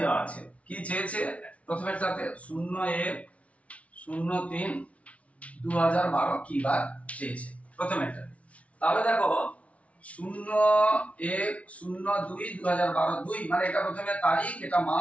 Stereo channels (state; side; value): late; right; 0.065 ms